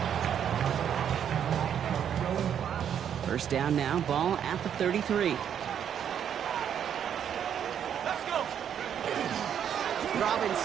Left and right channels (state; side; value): quieter; left; 8.8 dB